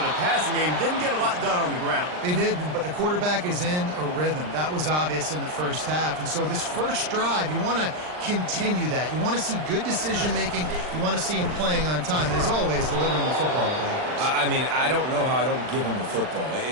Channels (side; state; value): left; late; 39 ms